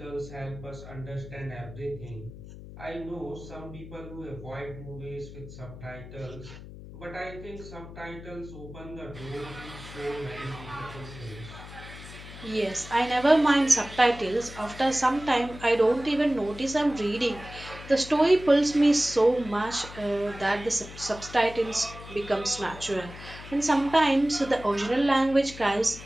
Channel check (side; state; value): left; noise; hum, 14 dB below the sound